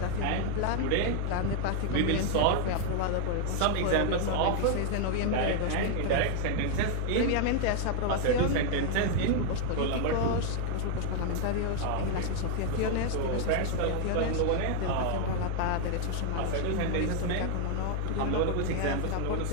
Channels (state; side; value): different; both; correlation 0.00